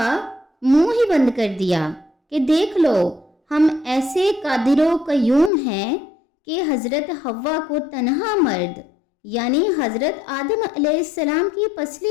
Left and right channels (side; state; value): right; drops out; at 5.5 s